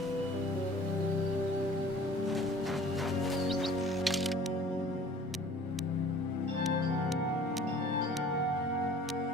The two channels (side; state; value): both; normal; correlation 0.49